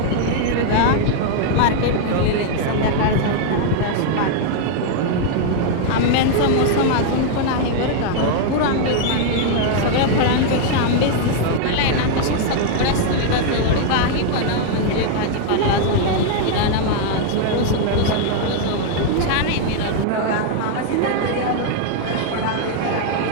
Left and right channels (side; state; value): both; different; correlation 0.00